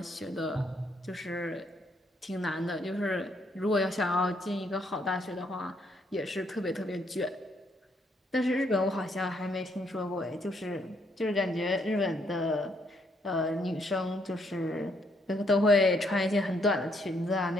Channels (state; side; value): normal; both; correlation 0.72